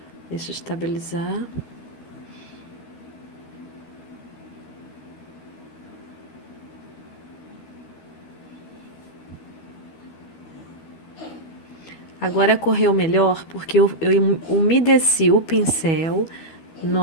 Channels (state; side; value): late; right; 12 ms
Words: Deixa eu estabilizar. Agora correu melhor porque eu umedeci o pincel